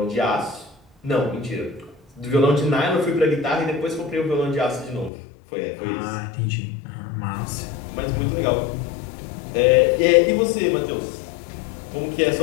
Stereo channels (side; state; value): right; drops out; at 5.1 s